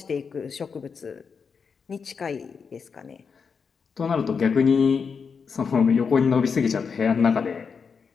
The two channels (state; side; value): quieter; right; 5.8 dB